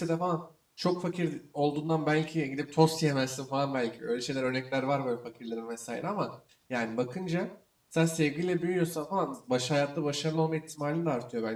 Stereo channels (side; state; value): both; identical; correlation 1.00